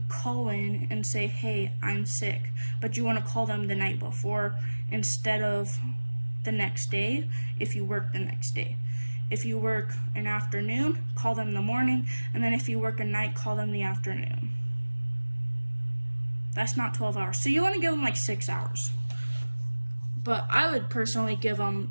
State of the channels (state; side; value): inverted; both; correlation -1.00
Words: call in and say, hey, I'm sick. But you want to call them the night before instead of the next day if you work the next day. If you work an afternoon, call them the morning, and then if you work a night, call them the afternoon. That's not 12 hours. So you want to give them like 6 hours. But I would personally give them